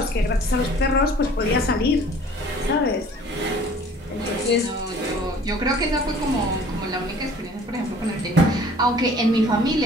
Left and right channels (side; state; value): both; normal; correlation 0.50